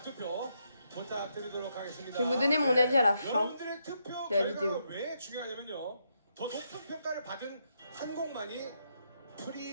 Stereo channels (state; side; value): inverted; both; correlation -0.79